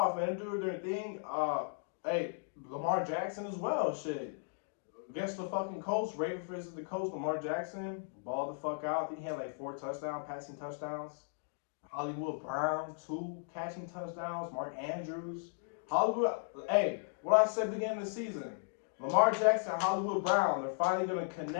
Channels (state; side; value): silent; right; digital silence